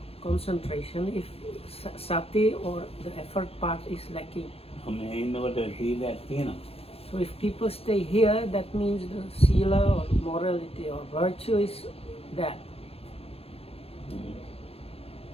concentration if sati or the effort part is lacking. So if people stay here, that means the sila or morality or virtue is there.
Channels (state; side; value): late; right; 0.28 ms